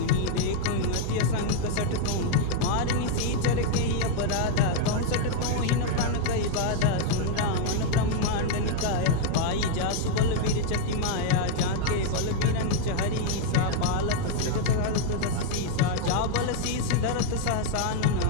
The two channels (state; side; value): different; both; correlation 0.00